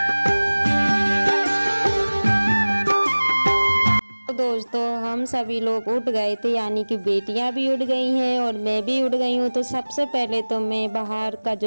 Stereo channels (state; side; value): inverted; both; correlation -1.00